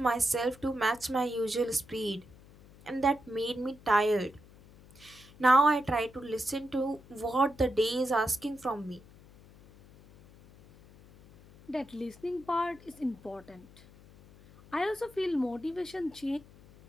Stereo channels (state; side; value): noise; left; hum, 23 dB below the sound